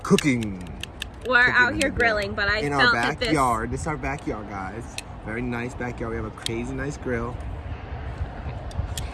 We're out here grilling, but I in felt our that backyard. This is our backyard, guys. Very nice backyard. We have a crazy nice grill.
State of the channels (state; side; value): identical; both; correlation 1.00